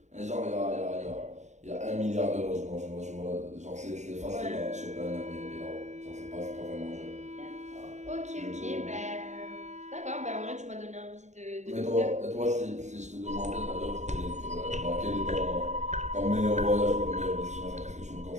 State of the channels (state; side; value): late; left; 0.34 ms